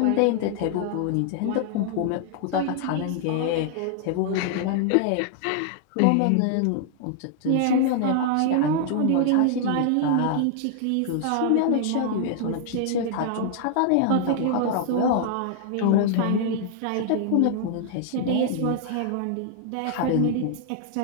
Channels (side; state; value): both; different; correlation -0.01